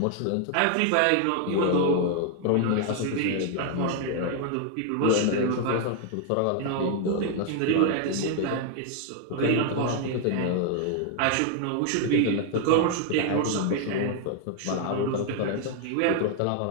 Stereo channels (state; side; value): different; both; correlation 0.00